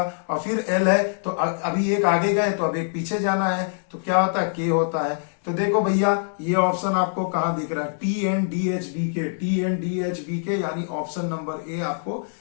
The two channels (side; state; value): right; silent; digital silence